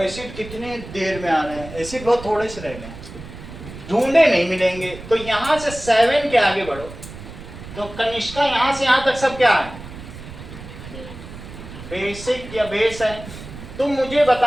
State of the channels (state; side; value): noise; right; rumble, 14 dB below the sound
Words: कितने देर में आना है, एसिड बहुत थोड़े से रह गए, ढूंढे नहीं मिलेंगे। तो यहां से 7 के आगे बढ़ो, तो कनिष्का यहां से यहां तक सब क्या है, बेसिक या बेस है। तुम मुझे